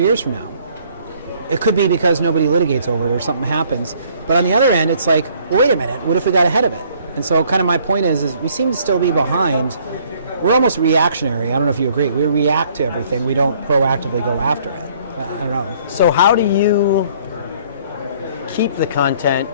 years from now. It could be because nobody litigates over it or something happens. But on the other end, it's like, well, wait a minute, what if we got ahead of it? And so kind of my point is we seem to still be behind. We're almost reactionary. I don't know if you agree. We react to everything. We don't proactively go after it. I don't know. So how do you keep the content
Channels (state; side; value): inverted; both; correlation -0.60